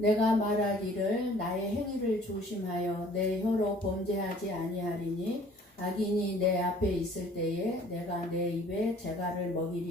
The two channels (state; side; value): normal; both; correlation 0.54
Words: 말하기를 나의 행위를 조심하여 내 혀로 범죄하지 아니하리니 악인이 내 앞에 있을 때에 내가 내 입에 재갈을